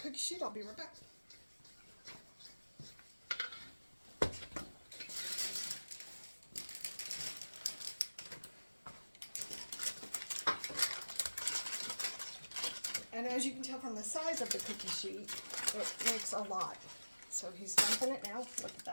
sheet. I'll be right back. And as you can tell from the size of the cookie sheet, it makes a lot. So he's dumping it now. Look at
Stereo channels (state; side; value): inverted; both; correlation -1.00